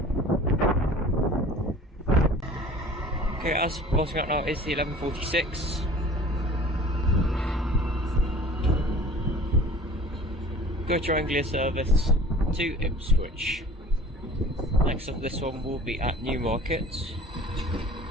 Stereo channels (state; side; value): normal; both; correlation 0.45